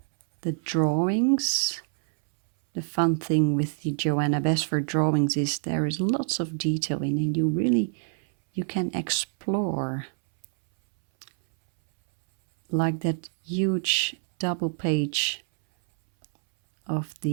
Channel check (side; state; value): left; silent; 61 dB below the other